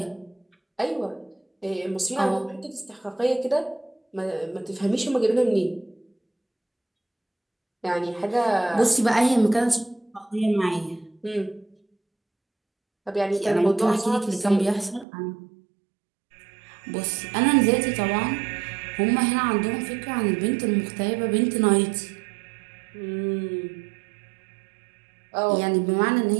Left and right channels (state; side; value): drops out; left; at 15.1 s